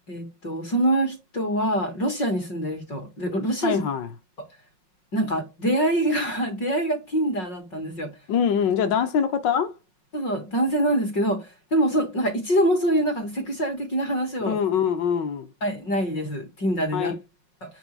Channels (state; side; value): late; right; 5.4 ms